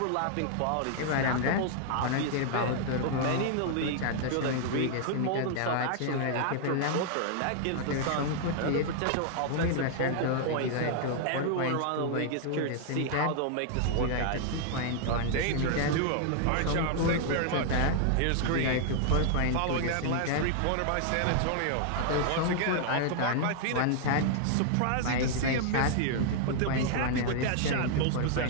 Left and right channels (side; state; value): both; different; correlation -0.01